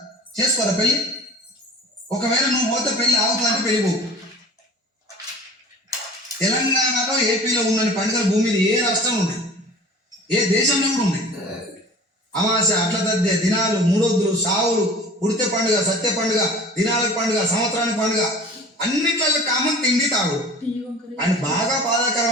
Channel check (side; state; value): both; normal; correlation 0.42